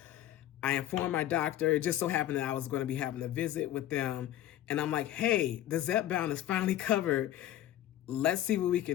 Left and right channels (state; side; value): quieter; right; 12.7 dB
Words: I informed my doctor. It just so happened that I was going to be having a visit with them. And I'm like, hey, the Zepbound is finally covered. Let's see what we